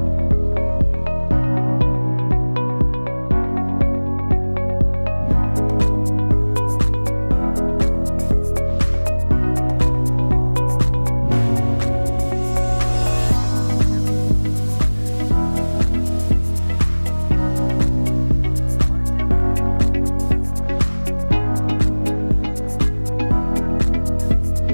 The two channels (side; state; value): both; inverted; correlation -1.00